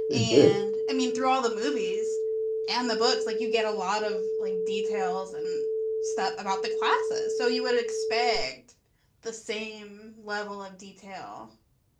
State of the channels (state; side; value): identical; both; correlation 1.00